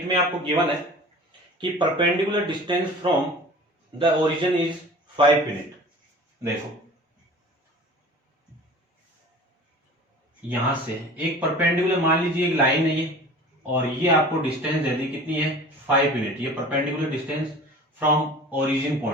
में आपको गिवन है कि perpendicular distance from the origin is 5 unit. देखो यहां से एक परपेंडिकुलर, मान लीजिए एक लाइन है ये, और ये आपको डिस्टेंस दे दी कितनी है, 5 यूनिट। ये perpendicular distance from origin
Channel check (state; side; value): normal; both; correlation 0.41